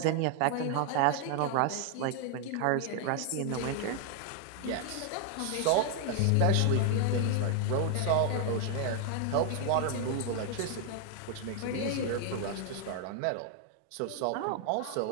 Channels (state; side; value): different; both; correlation 0.00